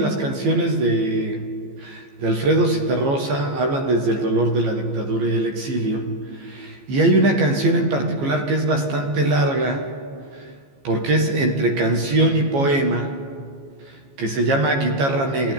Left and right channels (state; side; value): late; left; 15 ms